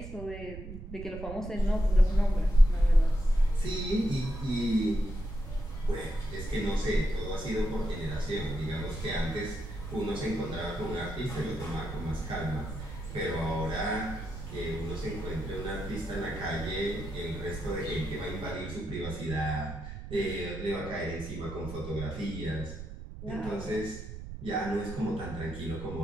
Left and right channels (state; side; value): noise; right; rumble, 10 dB below the sound